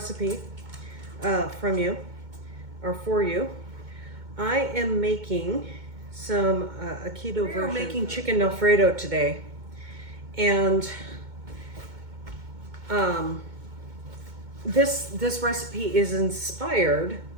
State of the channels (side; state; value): left; late; 2.2 ms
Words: from you or for you. I am making some a keto version. We're making chicken Alfredo today, and this recipe is inspired